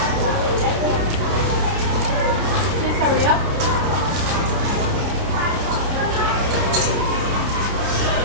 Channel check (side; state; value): left; late; 30 ms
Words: Please hurry up.